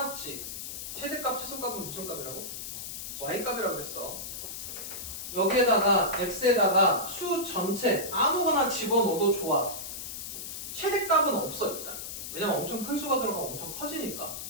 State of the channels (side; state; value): left; noise; hiss, 7 dB below the sound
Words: 최대값, 최소값은 무슨 값이라고? y값이라고 그랬어. 여기에다가 x에다가 수 전체 아무거나 집어넣어도 좋아. 최대값은 없어 일단. 왜냐면 엄청 큰 수가 들어가면 엄청 커지니까.